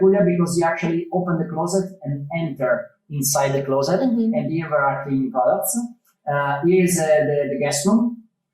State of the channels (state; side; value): identical; both; correlation 1.00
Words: because you actually open the closet and enter inside the closet, and here there are cleaning products. Here is the guest room,